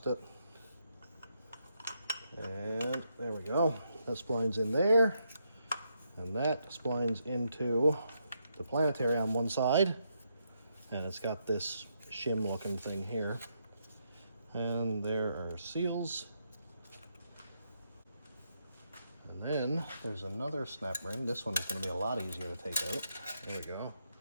it. And there we go. That splines in there, and that splines into the planetary on one side, and it's got this shim looking thing here. And there are seals. And then there's another snap ring. This one is going to be a lot easier to take out. There we go.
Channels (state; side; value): inverted; both; correlation -0.79